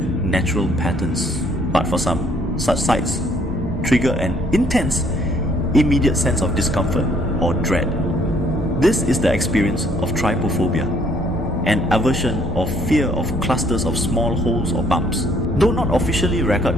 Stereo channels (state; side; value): normal; both; correlation 0.64